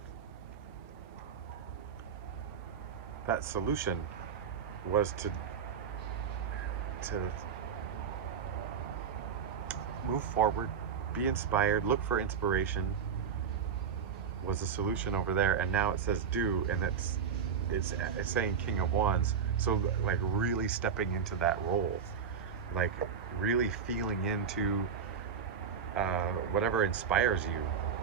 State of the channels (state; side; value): quieter; left; 6.8 dB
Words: That solution was to move forward, be inspired, look for inspiration, was the solution over there. And now it says do, and it's saying King of Wands. So like really stepping into that role, like really feeling into whatever inspires you.